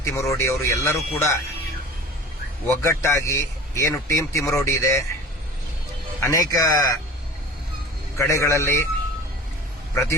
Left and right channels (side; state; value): both; normal; correlation 0.40